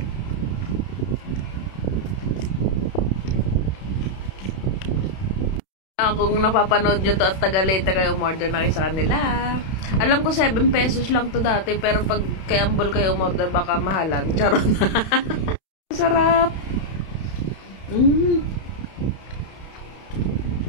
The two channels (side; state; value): right; late; 31 ms